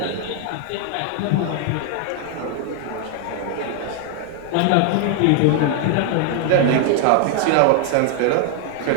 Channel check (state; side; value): different; both; correlation 0.00